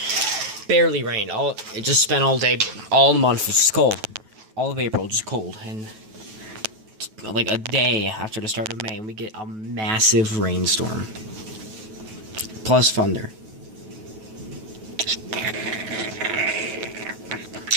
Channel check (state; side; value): late; left; 9.3 ms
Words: Barely rained. It just spent all day, all the month, it's just cold. All of April, just cold. And, like, a day after the start of May, we get a massive rainstorm. Plus thunder.